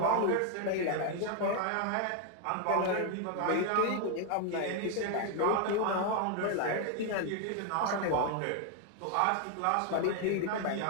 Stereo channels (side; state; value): both; different; correlation 0.00